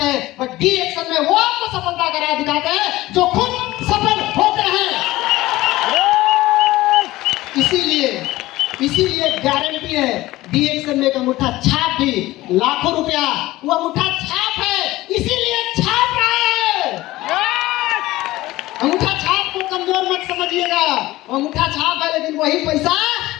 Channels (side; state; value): right; quieter; 17.6 dB